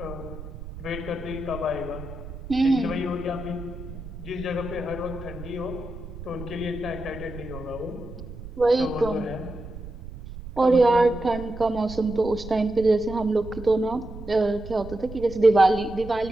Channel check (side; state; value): right; noise; rumble, 12 dB below the sound